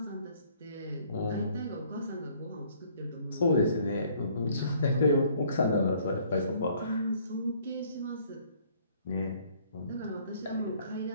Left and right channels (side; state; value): both; inverted; correlation -0.60